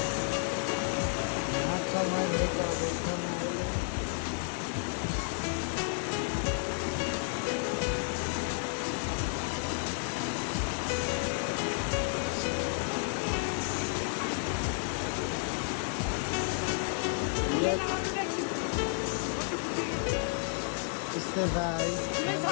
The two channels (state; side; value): silent; right; 57 dB below the other